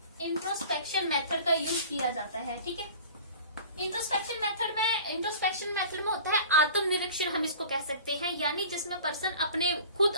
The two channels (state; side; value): inverted; both; correlation -0.42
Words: इंट्रोस्पेक्शन मेथड का यूज किया जाता है, ठीक है। इंट्रोस्पेक्शन मेथड में होता है आत्मनिरीक्षण, हम इसको कह सकते हैं, यानी जिसमें पर्सन